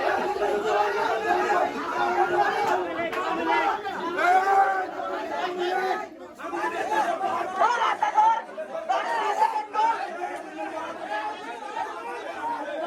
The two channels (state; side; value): identical; both; correlation 1.00